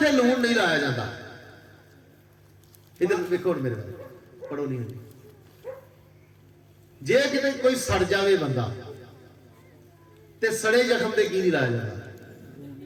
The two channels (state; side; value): identical; both; correlation 1.00